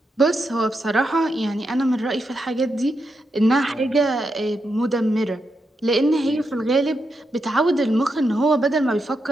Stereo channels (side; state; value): both; normal; correlation 0.85